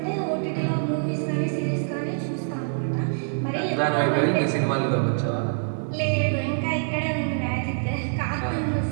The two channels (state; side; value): silent; left; digital silence